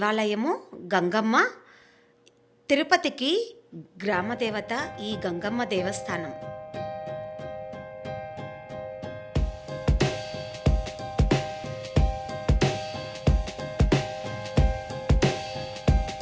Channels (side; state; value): both; identical; correlation 1.00